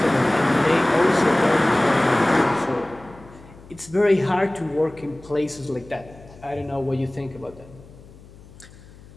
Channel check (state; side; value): noise; left; hum, 21 dB below the sound